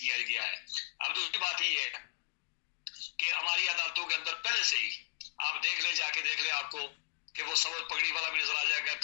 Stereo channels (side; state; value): right; silent; digital silence